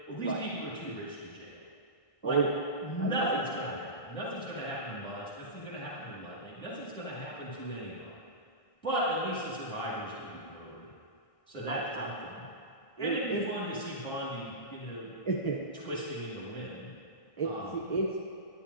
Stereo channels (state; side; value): late; right; 1.6 ms